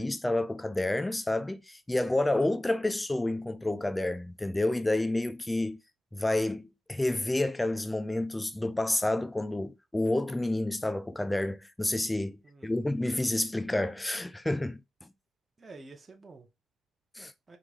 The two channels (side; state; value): both; normal; correlation 0.98